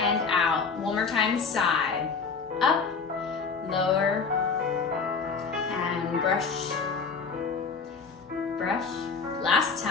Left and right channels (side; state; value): right; quieter; 5.1 dB